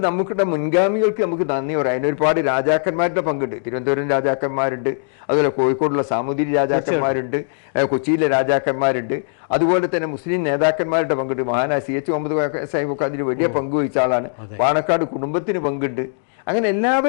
നമുക്കിടെ മുൻഗാമികൾക്ക് നമുക്ക് നന്ദി പറയാം. അതിനൊരുപാട് രാജാക്കന്മാരുടെ പങ്കുണ്ട്. തിരുവനന്തപുരം രാജാക്കന്മാരുണ്ട്, അതുപോലെ കോഴിക്കോടുള്ള സാമൂതിരി രാജാക്കന്മാരുണ്ട്, കൊച്ചിയിലെ രാജാക്കന്മാരുണ്ട്, അതുപോലെ തന്നെ മുസ്ലിം നേതാക്കന്മാരുടെ പങ്കുണ്ട്. മഹാനായ CH മുഹമ്മദ് സാഹിബൊക്കെ അതിന് വലിയ പങ്കുവഹിച്ച ആളാണ്. പാണക്കാട് കുടുംബത്തിന് പങ്കുണ്ട്. അങ്ങനെ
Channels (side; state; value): right; silent; digital silence